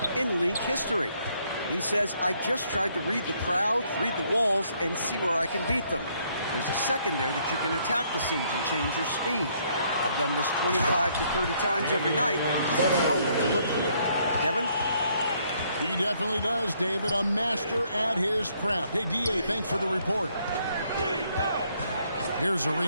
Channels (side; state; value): both; inverted; correlation -0.68